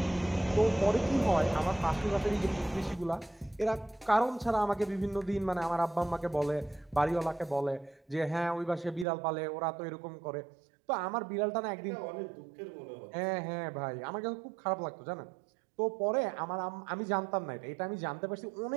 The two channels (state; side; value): drops out; left; at 9.1 s